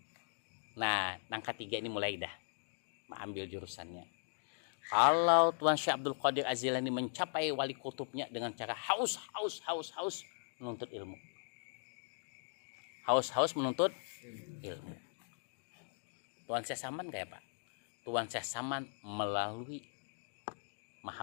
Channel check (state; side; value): silent; right; digital silence